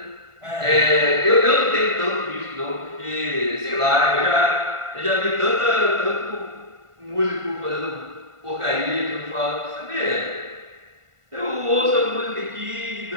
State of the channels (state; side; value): late; left; 1.5 ms